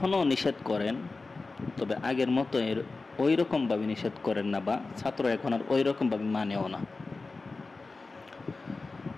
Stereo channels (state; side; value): quieter; right; 3.7 dB